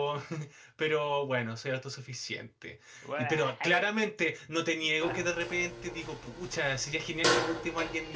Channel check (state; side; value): identical; both; correlation 1.00